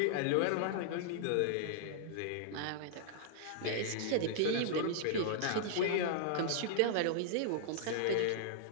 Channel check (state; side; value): different; both; correlation -0.01